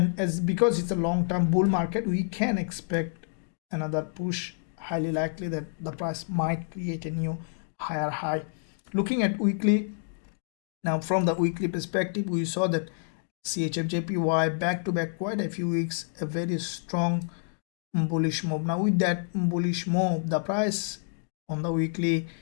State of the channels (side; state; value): right; silent; digital silence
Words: as because it's a long-term bull market, we can expect another push. Highly likely that the price might create a new higher high. Looking at weekly, now from the weekly perspective we saw that CHFJPY back to back quite a few weeks a very strong bullish move. Now with that bullish move, the price on the weekly